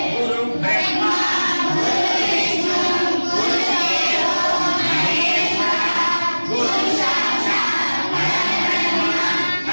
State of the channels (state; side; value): inverted; both; correlation -1.00